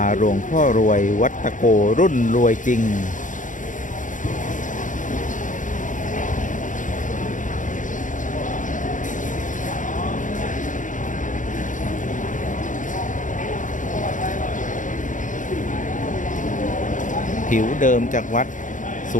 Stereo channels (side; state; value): right; late; 0.37 ms